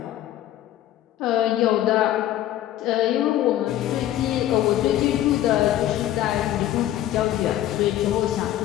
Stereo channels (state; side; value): quieter; right; 13.0 dB